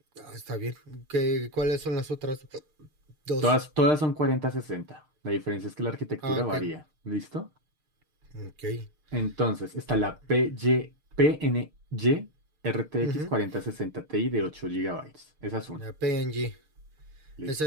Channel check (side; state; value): left; late; 6.6 ms